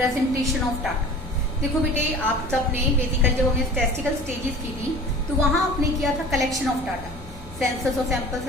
of data. देखो बेटे आप सबने बेसिकली जब हमने स्टैटिस्टिकल स्टेजेस की थी तो वहां आपने किया था कलेक्शन ऑफ डाटा, सेंसस और सैंपल्स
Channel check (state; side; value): normal; both; correlation 0.42